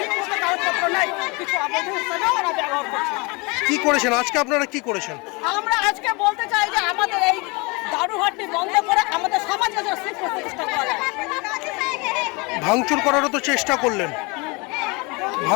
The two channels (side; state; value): right; quieter; 28.0 dB